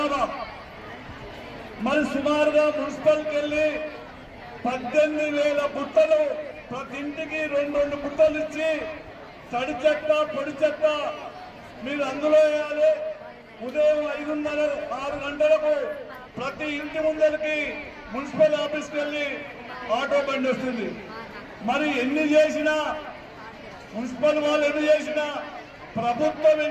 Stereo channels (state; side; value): identical; both; correlation 1.00